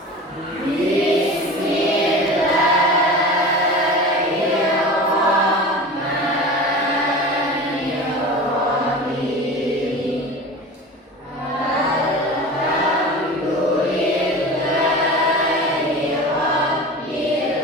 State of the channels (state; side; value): normal; both; correlation 0.34